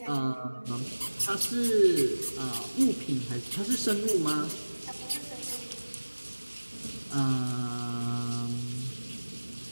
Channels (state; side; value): inverted; both; correlation -1.00